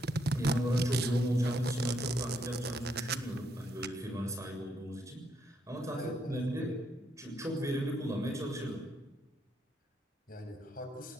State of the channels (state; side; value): normal; both; correlation 0.75